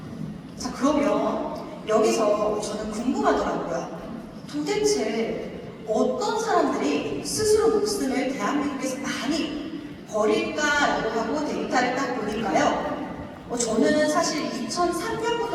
자, 그러면 여기서 저는 궁금하더라고요. 도대체 어떤 사람들이 스스로 목숨을 대한민국에서 많이 버릴까라고 하고 데이터를 딱 보니까요. 저는 사실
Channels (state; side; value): identical; both; correlation 1.00